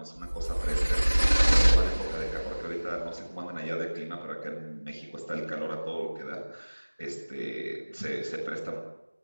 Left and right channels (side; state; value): both; inverted; correlation -1.00